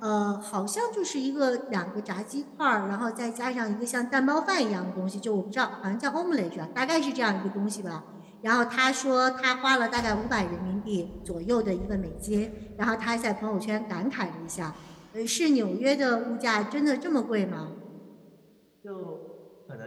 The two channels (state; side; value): identical; both; correlation 1.00